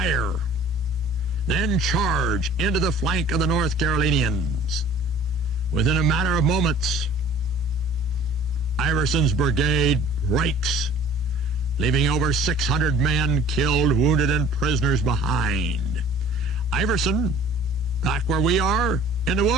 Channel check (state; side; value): normal; both; correlation 0.49